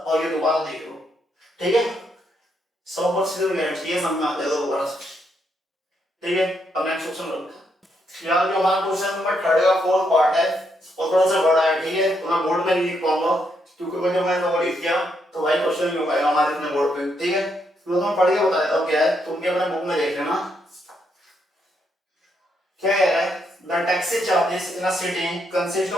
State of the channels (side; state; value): both; normal; correlation 0.77